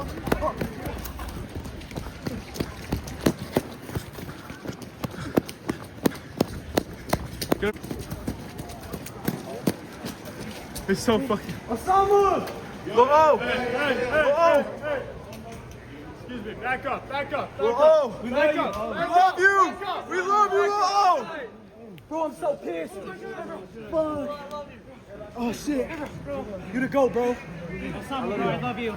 It's so fucking. Osama! Oh! Hey. Excuse me. Back up. Oh! We Back love up. you. We love you! We love you! Oh! Bro, I'm so pissed. Fuck. Oh, shit. You the GOAT, bro. Osama, bro, I love you. I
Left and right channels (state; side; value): identical; both; correlation 1.00